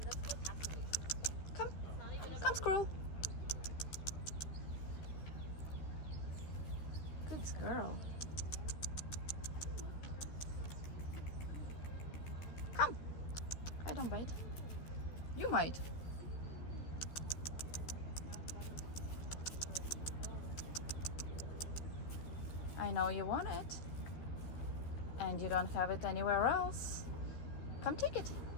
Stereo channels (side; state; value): right; late; 13 ms